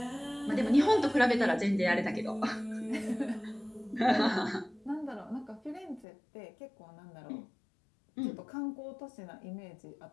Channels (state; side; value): drops out; right; at 6.1 s